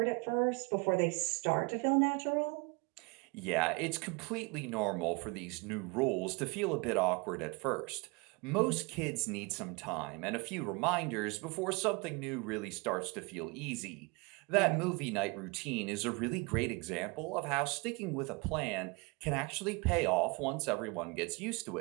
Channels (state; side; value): quieter; left; 28.7 dB